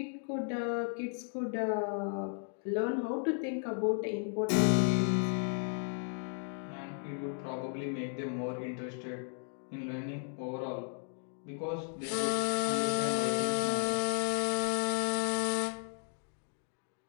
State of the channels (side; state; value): right; silent; 55 dB below the other